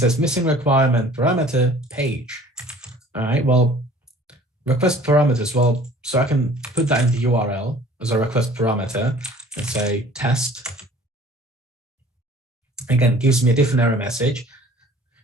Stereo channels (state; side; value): normal; both; correlation 0.50